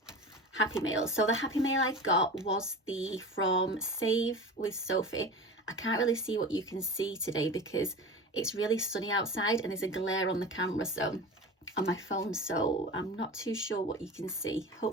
Happy Mail. So the Happy Mail I got was from Save with Sophie. I can't really see what you can see today because it's really sunny outside and there's a glare on the camera, so on my phone, so I'm not too sure what you can see.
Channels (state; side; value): normal; both; correlation 0.32